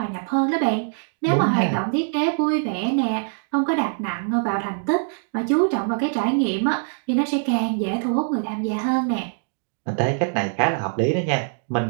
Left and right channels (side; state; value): left; silent; digital silence